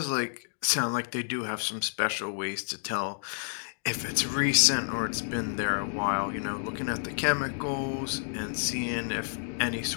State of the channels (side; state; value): right; silent; digital silence